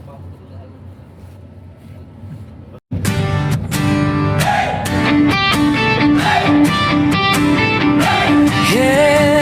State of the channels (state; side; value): identical; both; correlation 1.00